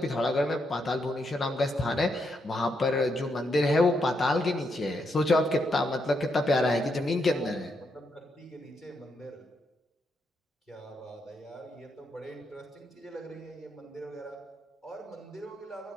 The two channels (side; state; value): both; normal; correlation 0.80